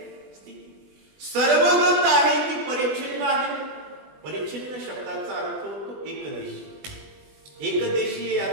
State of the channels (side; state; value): left; late; 20 ms